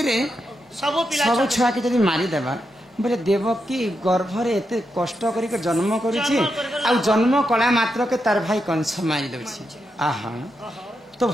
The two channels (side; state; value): both; normal; correlation 0.85